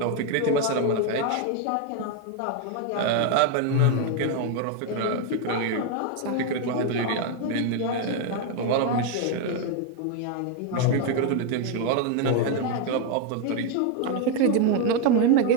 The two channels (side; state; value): both; different; correlation 0.01